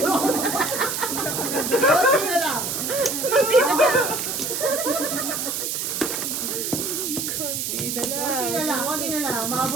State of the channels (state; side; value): noise; right; hiss, 2 dB below the sound